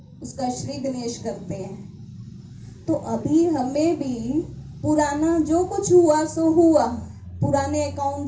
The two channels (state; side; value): identical; both; correlation 1.00